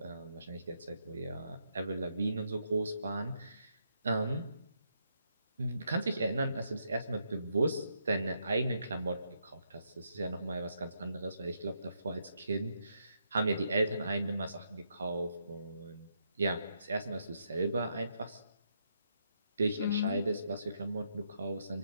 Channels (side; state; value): both; inverted; correlation -0.78